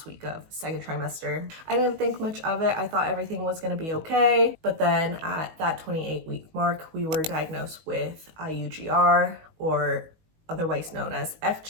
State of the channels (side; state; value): left; late; 19 ms